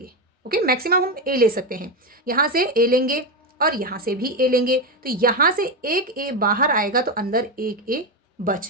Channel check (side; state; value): both; normal; correlation 0.11